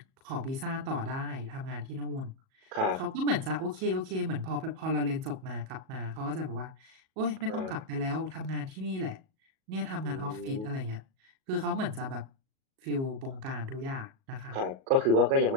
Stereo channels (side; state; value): left; late; 37 ms